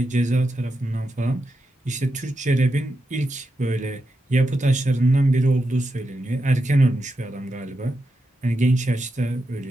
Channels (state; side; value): normal; both; correlation 0.87